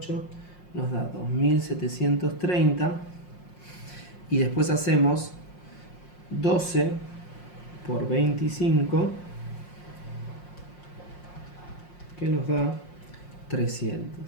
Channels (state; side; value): late; right; 5.6 ms